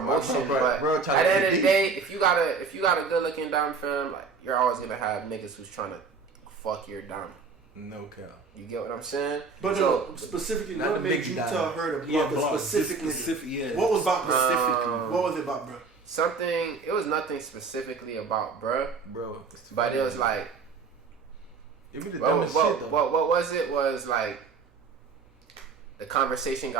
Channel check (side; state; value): left; quieter; 4.8 dB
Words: but at the end of the day, if you got a good looking dom fam, like you're always gonna have niggas who's trying to fuck your dom. No cap. You get what I'm saying? But so, specifically, not what the made big you dom. tell her to block specifically? Yeah. What was about specifically? What was it about, bro? It was nothing specifically about bro, but it was like. It be the dumbest shit though. What was it? Was like. The conversation